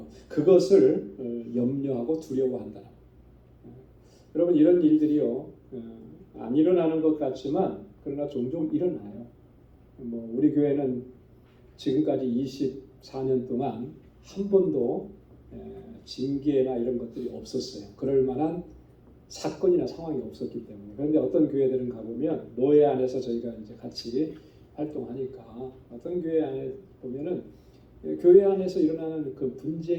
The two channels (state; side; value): identical; both; correlation 1.00